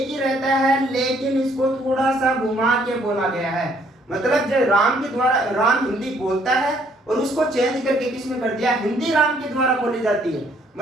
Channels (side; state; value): both; normal; correlation 0.65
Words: ही रहता है, लेकिन इसको थोड़ा सा घुमा के बोला गया है। मतलब जो राम के द्वारा, राम हिंदी बोलता है और उसको चेंज करके किसने कर दिया, हिंदी राम के द्वारा बोली जाती है।